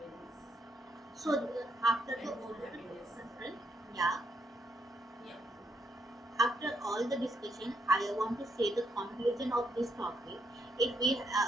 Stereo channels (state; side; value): normal; both; correlation 0.77